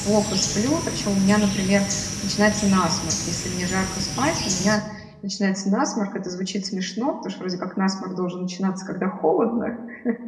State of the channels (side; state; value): both; identical; correlation 1.00